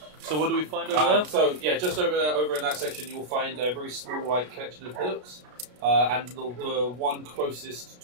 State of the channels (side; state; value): left; late; 33 ms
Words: So what do we find over there? So yeah, just over in that section, you'll find a very small like collection of hillocks. and the one closest